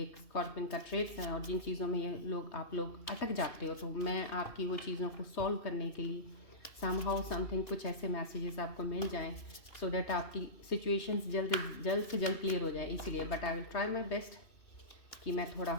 स्कॉर्पियन का ट्रेड्स हैं और जिन चीज़ों में ये आप लोग अटक जाते हो, तो मैं आपकी वो चीज़ों को सॉल्व करने के लिए समहाउ समथिंग कुछ ऐसे मैसेजेस आपको मिल जाएं सो दैट आपकी सिचुएशंस जल्द से जल्द क्लियर हो जाए। इसीलिए but I will try my best कि मैं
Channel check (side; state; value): right; late; 2.7 ms